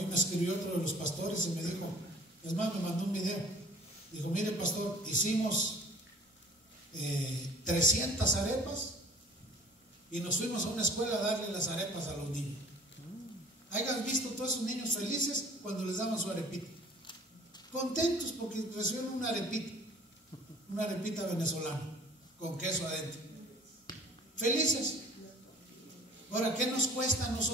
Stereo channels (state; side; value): normal; both; correlation 0.50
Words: me escribió otro de los pastores y me dijo, es más, me mandó un video. Dijo, mire pastor, hicimos 300 arepas y nos fuimos a una escuela a darle las arepas a los niños. Hayan visto todos esos niños felices cuando les daban su arepita, contentos porque recibieron una arepita venezolana con queso adentro, felices. Ahora, ¿qué nos cuesta a